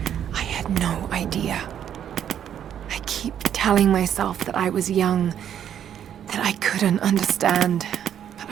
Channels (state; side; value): quieter; left; 9.6 dB